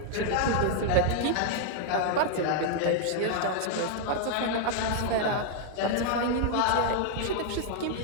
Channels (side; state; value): both; different; correlation 0.00